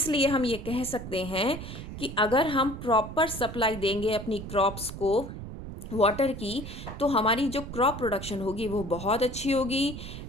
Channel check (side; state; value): right; noise; rumble, 9 dB below the sound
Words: हम ये कह सकते हैं कि अगर हम प्रॉपर सप्लाई देंगे अपनी क्रॉप्स को वाटर की, तो हमारी जो क्रॉप प्रोडक्शन होगी वो बहुत अच्छी होगी।